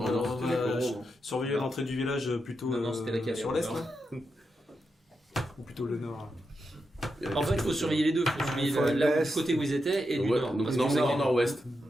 va surveiller l'entrée du village plutôt sur l'est, là. Ou plutôt le nord. En fait, il faut surveiller les deux. Il faut surveiller du côté où ils étaient et du nord. Donc nord-nord-ouest.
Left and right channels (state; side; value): normal; both; correlation 0.86